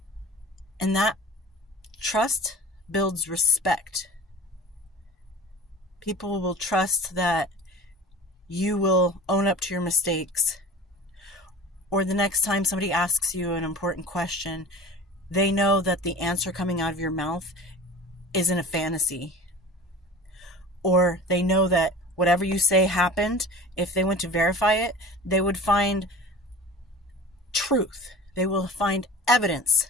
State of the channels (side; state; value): both; normal; correlation 0.39